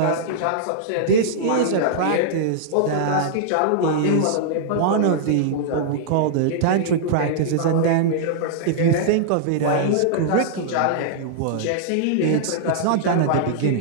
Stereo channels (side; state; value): both; different; correlation -0.02